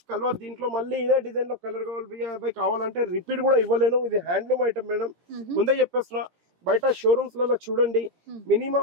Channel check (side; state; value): left; late; 17 ms